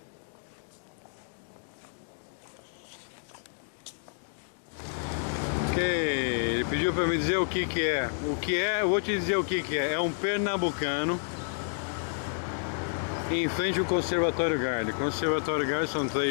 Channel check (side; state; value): right; silent; digital silence